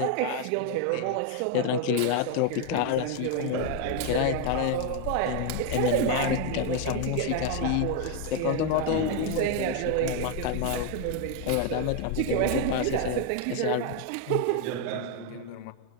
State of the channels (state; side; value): different; both; correlation 0.01